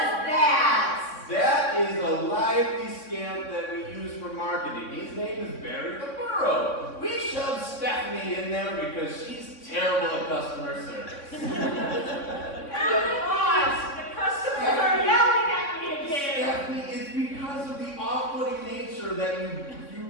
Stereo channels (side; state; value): right; late; 3.6 ms